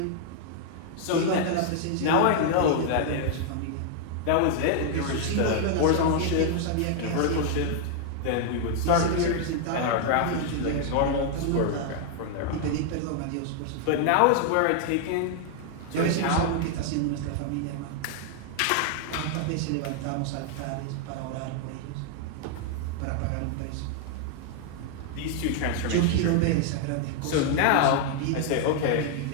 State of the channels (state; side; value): different; both; correlation 0.00